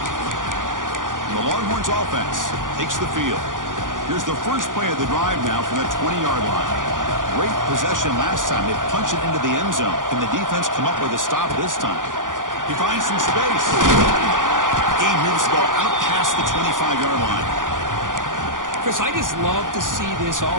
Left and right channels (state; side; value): late; left; 0.88 ms